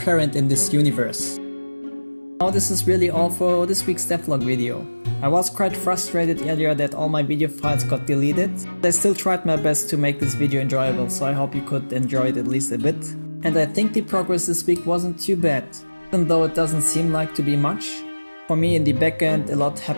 in this universe. Now this is really all for this week's devlog video. I was quite frustrated earlier that all my video files got deleted. I still tried my best to make this video enjoyable, so I hope you could enjoy it at least a bit. And I think the progress this week wasn't too bad, even though it doesn't seem like to be much. For me in the backend a lot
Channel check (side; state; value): both; inverted; correlation -1.00